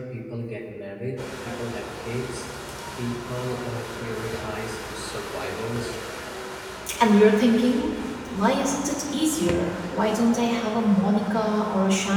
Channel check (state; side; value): identical; both; correlation 1.00